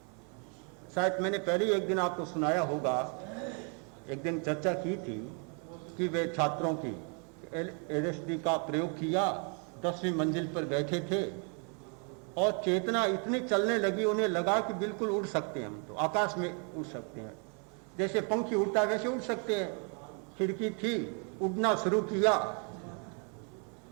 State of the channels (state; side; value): quieter; left; 38.6 dB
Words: शायद मैंने पहले एक दिन आपको सुनाया होगा, एक दिन चर्चा की थी कि वे छात्रों की LSD का प्रयोग किया, 10वीं मंजिल पर बैठे थे और चेतना इतनी चलने लगी, उन्हें लगा कि बिल्कुल उड़ सकते हैं, हम तो आकाश में उड़ सकते हैं, जैसे पंखी उड़ता है वैसे उड़ सकते हैं। खिड़की थी, उड़ना शुरू किया,